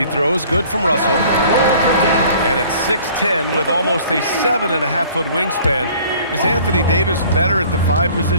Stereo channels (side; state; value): both; inverted; correlation -0.51